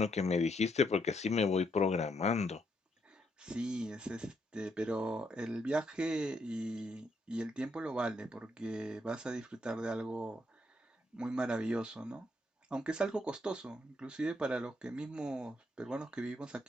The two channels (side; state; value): both; normal; correlation 0.76